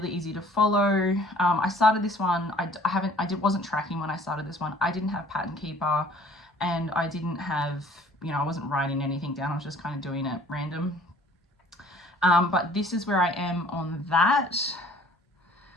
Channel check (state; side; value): normal; both; correlation 0.53